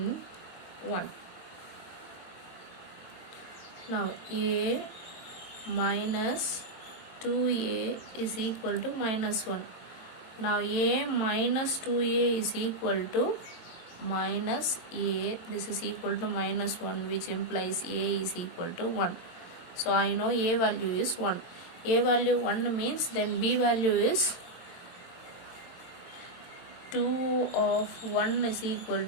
1. Now A minus 2A is equal to minus 1. Now A minus 2A is equal to minus A. This is equal to minus 1, which implies A is equal to 1. So I know A value is 1. A value 1 means then B value is 2 of 1 is equal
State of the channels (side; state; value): right; late; 23 ms